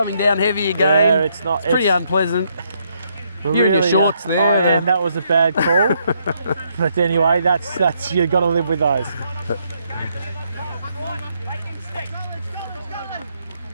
down heavy again. Yeah, it's pretty unpleasant. You're really, in your shorts there. And that was a bad call. But anyway, that's you've got to live with those.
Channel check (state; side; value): inverted; both; correlation -0.74